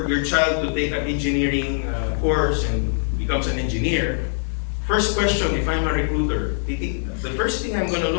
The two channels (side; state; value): right; silent; digital silence